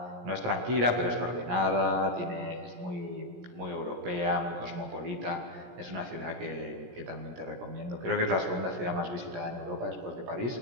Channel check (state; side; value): late; left; 17 ms